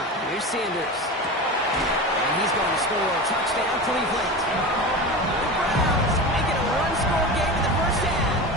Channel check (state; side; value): normal; both; correlation 0.27